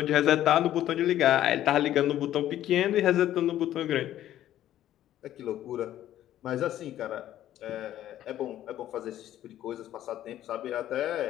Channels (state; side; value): quieter; right; 12.5 dB